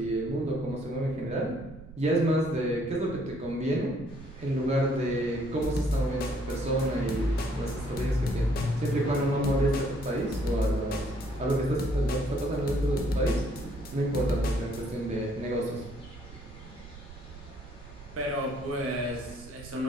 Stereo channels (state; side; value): noise; right; rumble, 16 dB below the sound